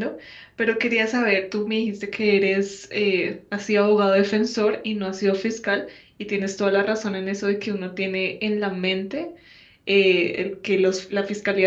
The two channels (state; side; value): identical; both; correlation 1.00